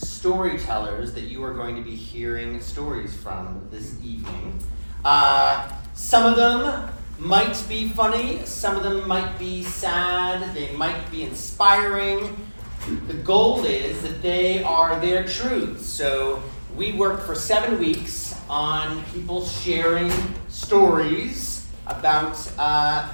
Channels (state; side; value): inverted; both; correlation -1.00